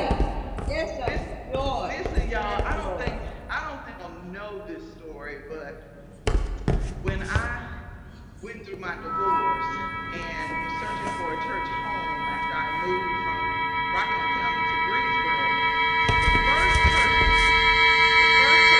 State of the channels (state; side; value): identical; both; correlation 1.00